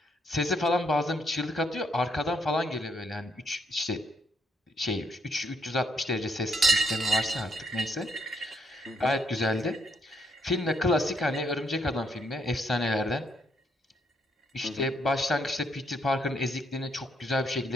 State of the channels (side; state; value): both; normal; correlation 0.73